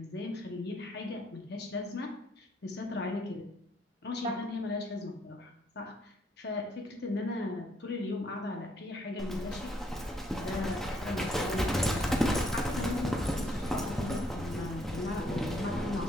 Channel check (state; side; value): normal; both; correlation 0.69